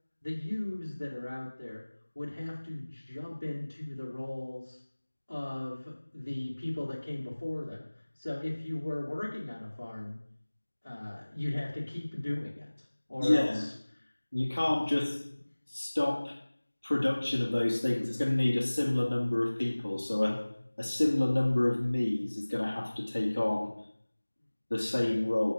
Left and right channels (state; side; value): inverted; both; correlation -1.00